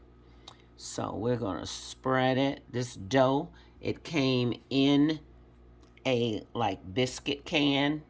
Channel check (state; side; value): identical; both; correlation 1.00